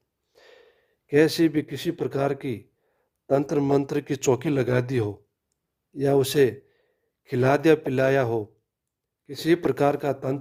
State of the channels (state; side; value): identical; both; correlation 1.00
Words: कैसी भी किसी प्रकार की तंत्र मंत्र की चौकी लगा दी हो, या उसे खिला दिया पिलाया हो, किसी प्रकार का